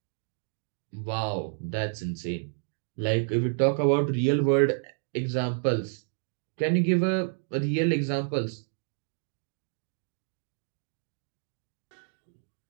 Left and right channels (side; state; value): left; silent; 58 dB below the other